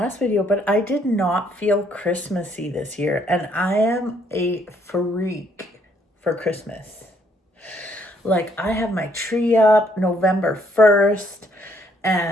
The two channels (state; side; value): normal; both; correlation 0.68